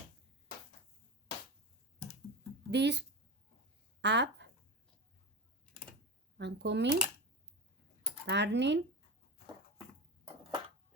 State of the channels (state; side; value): normal; both; correlation 0.22